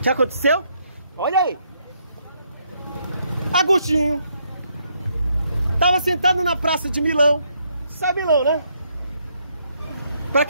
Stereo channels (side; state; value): both; inverted; correlation -0.74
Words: aconteceu? Olha aí. Agostinho estava sentado na praça de Milão. Sabe Milão, né? Para